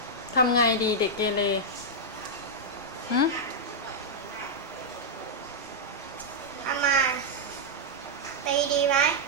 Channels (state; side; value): normal; both; correlation -0.05